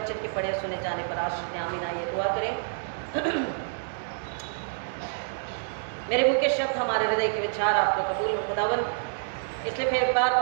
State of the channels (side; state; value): left; silent; digital silence